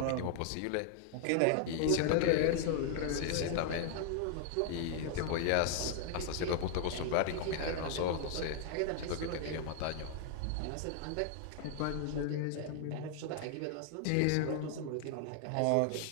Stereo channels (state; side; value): different; both; correlation 0.00